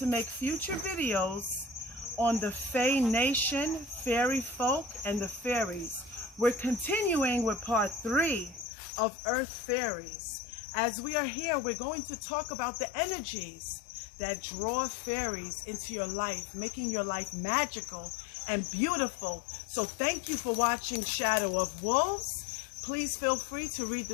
make future videos on the Fae Nation, fairy folk, and the fairies. We're continuing with part 3 of Earth Fairies. As we are here, we're going to talk about the energies that draw fairies into your life, making your life magical and beautiful. So thank you for watching Shadow of Wolves. Please feel free to read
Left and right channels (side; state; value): right; drops out; at 8.7 s